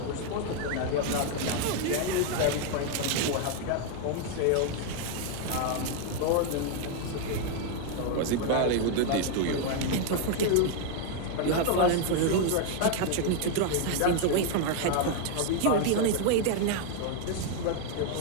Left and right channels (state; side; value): different; both; correlation 0.01